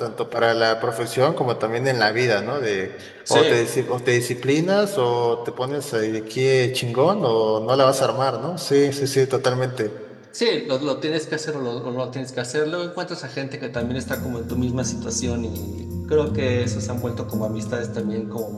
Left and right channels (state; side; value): identical; both; correlation 1.00